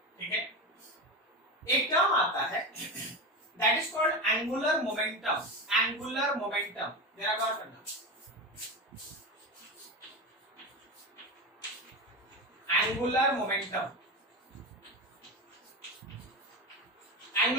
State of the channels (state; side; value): normal; both; correlation 0.20